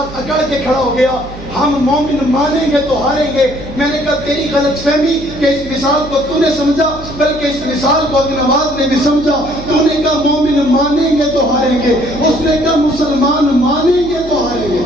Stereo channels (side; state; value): right; noise; hum, 15 dB below the sound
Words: اکڑ کے کھڑا ہو گیا. ہم مومن مانیں گے تو ہاریں گے. میں نے کہا تیری غلط فہمی کہ اس مثال کو تو نے سمجھا، بلکہ اس مثال کو ابن نواز نے بھی سمجھا. تو نے کہا مومن مانیں گے تو ہاریں گے، اس نے کہا مسلمان مانیں گے تو ہاریں گے.